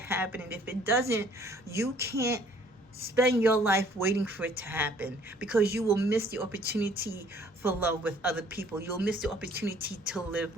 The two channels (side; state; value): both; normal; correlation 0.58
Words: happen. And if it doesn't, you can't spend your life waiting for it to happen, because you will miss the opportunity for love with other people. You'll miss the opportunity to live